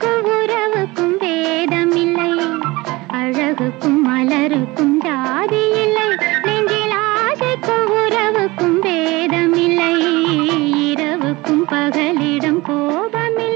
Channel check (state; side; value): quieter; left; 21.9 dB